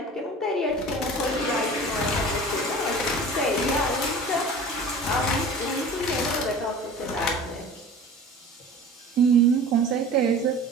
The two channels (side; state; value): both; normal; correlation 0.40